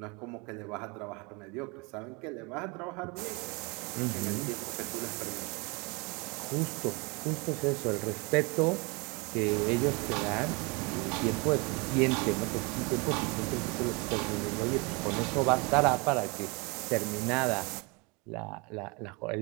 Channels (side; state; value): left; quieter; 28.8 dB